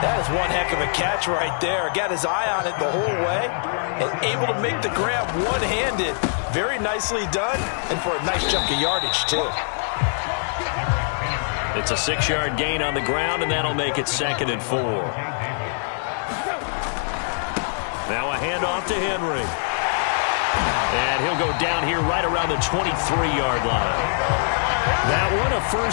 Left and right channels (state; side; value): silent; right; digital silence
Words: That is one heck of a catch right there. Got his eye on it the whole way and able to make the grab one-handed. Very nicely done, and for a nice chunk of yardage, too. It's a 6-yard gain on the ground, and that'll make it 2nd and 4. Now a handoff to Henry. And he'll go down here right around the 23-yard line. That one, a